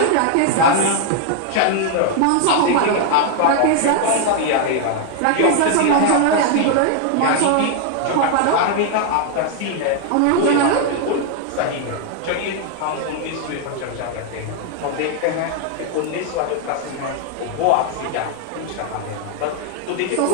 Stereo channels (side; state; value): both; different; correlation 0.00